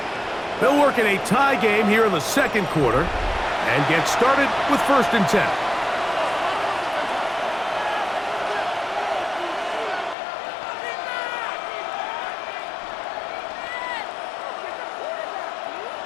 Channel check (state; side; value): drops out; right; at 10.2 s